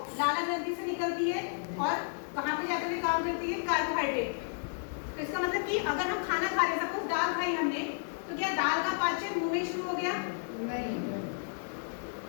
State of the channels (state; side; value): silent; right; digital silence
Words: लाला ग्रंथि से निकलती है और कहाँ पे जाकर के काम करती है? कार्बोहाइड्रेट। तो इसका मतलब कि अगर हम खाना खा रहे, सपोज दाल खाई हमने, तो क्या दाल का पाचन मुंह में शुरू हो गया? नहीं,